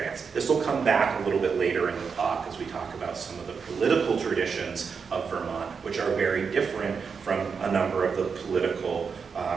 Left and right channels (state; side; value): quieter; left; 5.8 dB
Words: This will come back a little bit later in the talk as we talk about some of the political traditions of Vermont, which are very different from a number of the political